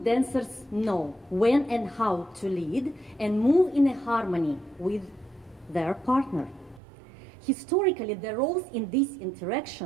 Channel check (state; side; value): drops out; left; at 6.8 s